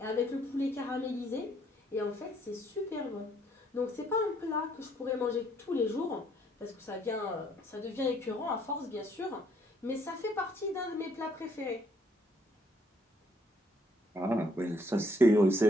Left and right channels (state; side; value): normal; both; correlation 0.67